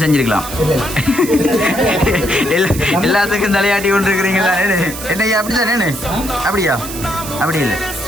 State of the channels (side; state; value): right; noise; hiss, 10 dB below the sound